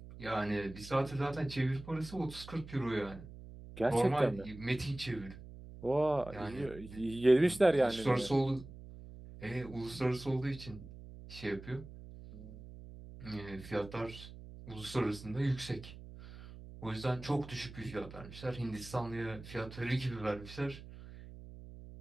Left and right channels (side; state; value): right; noise; hum, 15 dB below the sound